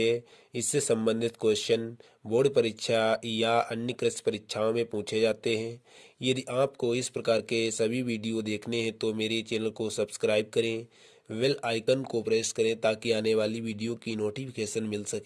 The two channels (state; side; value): identical; both; correlation 1.00